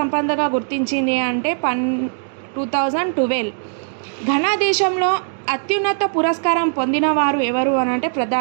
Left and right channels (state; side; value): silent; left; digital silence